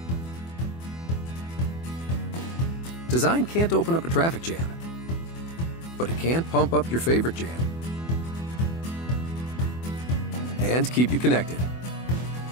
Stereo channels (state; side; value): late; right; 24 ms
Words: Design can't open up a traffic jam, but it can pump up your favorite jam and keep you connected.